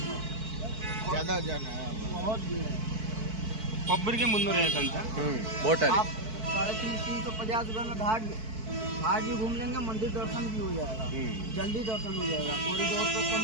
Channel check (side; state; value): left; late; 4.6 ms